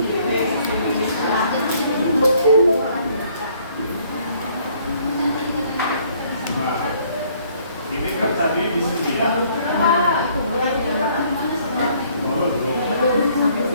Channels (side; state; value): both; inverted; correlation -0.63